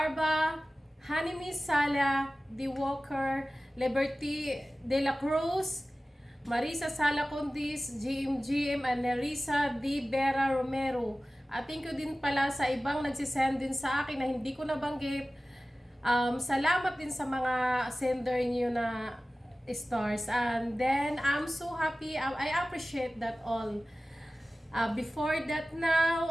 Hanimi Sala, D. Walker, Liberty De La Cruz, Marisa Sala Condis, GM, and Nerissa D. Vera Romero. At thank you din pala sa ibang nagsisend din sa akin na hindi ko nabanggit. Salamat din sa mga sender niyo na stars. And then, I'm so happy. I appreciate that all. Before that now,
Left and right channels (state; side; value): normal; both; correlation 0.97